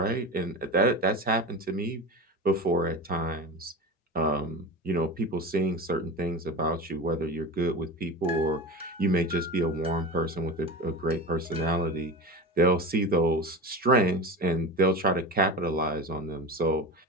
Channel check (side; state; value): both; normal; correlation 0.27